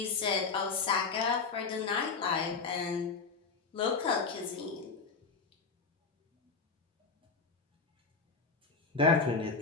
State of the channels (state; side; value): quieter; right; 4.7 dB